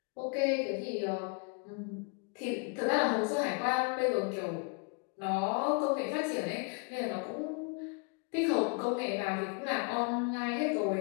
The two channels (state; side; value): quieter; right; 37.0 dB